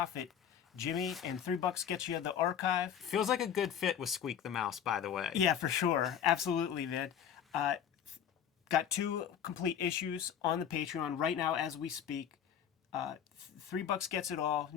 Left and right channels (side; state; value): right; quieter; 8.7 dB